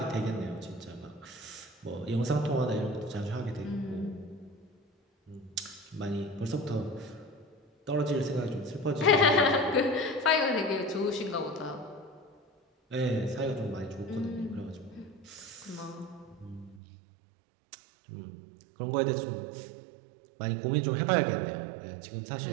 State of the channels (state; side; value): drops out; left; at 16.8 s